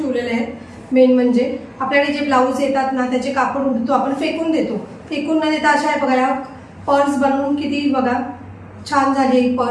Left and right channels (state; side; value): identical; both; correlation 1.00